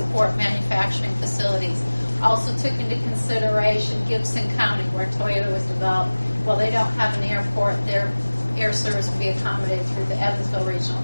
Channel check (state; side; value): inverted; both; correlation -1.00